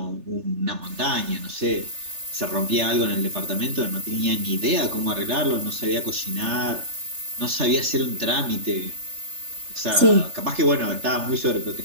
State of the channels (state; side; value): late; left; 3.3 ms